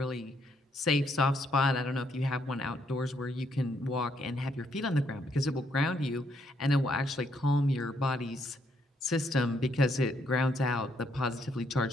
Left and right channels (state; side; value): normal; both; correlation 0.73